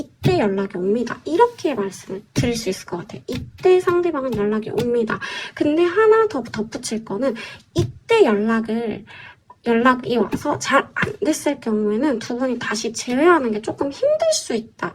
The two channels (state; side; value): identical; both; correlation 1.00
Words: 연락이 옵니다. 이렇게 말씀을 드릴 수 있을 것 같아요. 이때 상대방은 연락이 옵니다. 근데 하나 더 덧붙일 거는 이때 연락이 와서 잘 안 됐을 경우에는 두 분이 다시 재회하는 게 조금 힘들 수 있다.